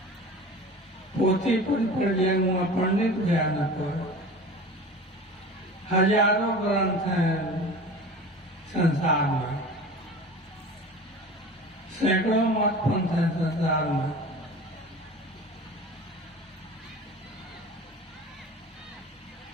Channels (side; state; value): both; normal; correlation 0.37